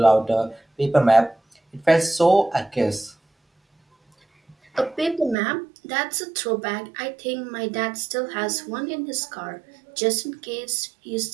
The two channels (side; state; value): left; drops out; at 5.4 s